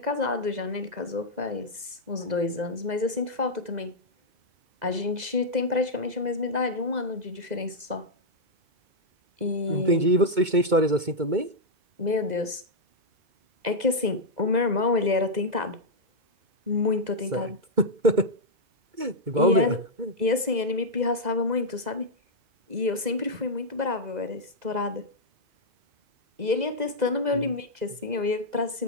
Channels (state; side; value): late; left; 2.0 ms